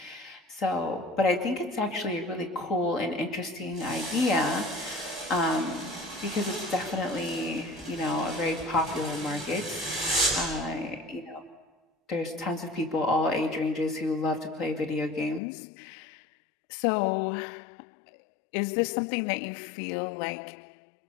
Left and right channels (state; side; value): drops out; right; at 15.4 s